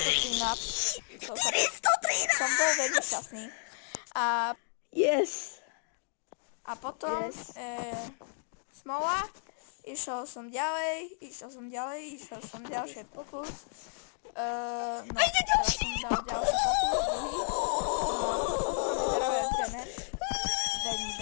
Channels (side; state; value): right; silent; 56 dB below the other